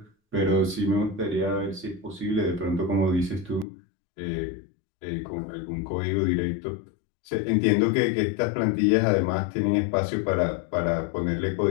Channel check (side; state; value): right; drops out; at 3.7 s